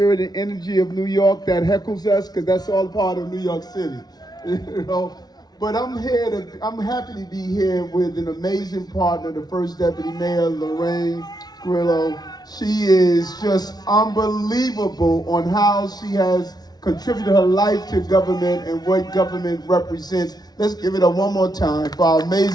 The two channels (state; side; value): late; right; 0.19 ms